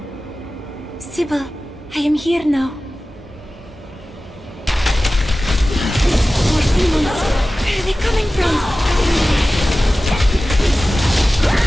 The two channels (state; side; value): normal; both; correlation 0.96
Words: Sibyl, I am here now. More demons! Where are they coming from?